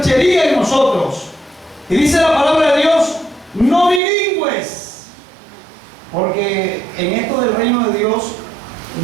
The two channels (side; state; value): left; drops out; at 4.0 s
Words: en nosotros. Y dice la palabra de Dios, no bilingües. Porque en esto del reino de Dios,